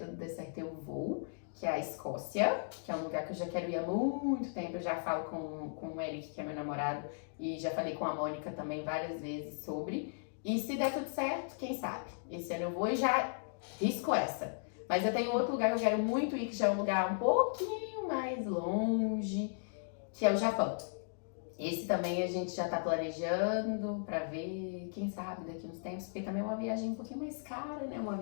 der certo eu vou, que é a Escócia, que é um lugar que eu já quero ir há muito tempo. Eu já falo com o Eric, que é meu namorado, e já falei com a Mônica também várias vezes sobre. E se der tudo certo, quem sabe? Esse ano eu vou e já risco essa. Mas eu tenho outro lugar que eu quero muito ir, que já é um lugar um pouquinho mais longe, que é o Japão. Esse também a gente já tá planejando pra ver, quem sabe, daqui uns tempos, porque também é uma viagem um pouquinho mais cara, né? Uma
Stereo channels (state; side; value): silent; right; digital silence